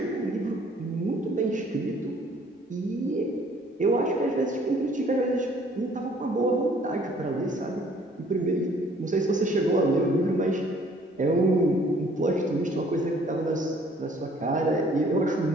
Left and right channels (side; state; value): both; normal; correlation 0.58